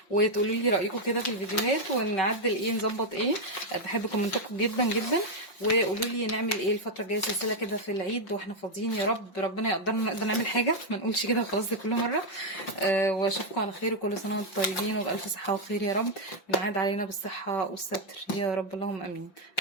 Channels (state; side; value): late; right; 5.6 ms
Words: وتقولوا لي رايكم كده في الفيديوهات ونعدل ايه نظبط ايه. بحب كومنتاتكم جدا جدا. وقولوا لي نعمل ايه الفتره الجايه، سلسله كده في العيد واحنا فاضيين، يا رب ربنا يقدرنا نقدر نعمل حاجه، ما نقولش كده وخلاص زي كل مره. واشوفكم على خير، وكل سنه وانتم طيبين وبالف صحه وخير يا رب. ونعاد علينا بالصحه والستر يا رب، اللهم امين.